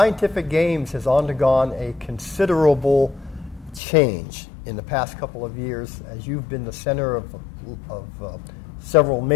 Games has undergone a considerable change in the past couple of years as you've been the center of several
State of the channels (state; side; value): drops out; right; at 3.8 s